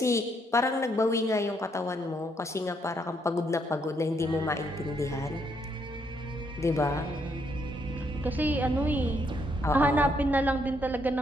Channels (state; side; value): normal; both; correlation 0.73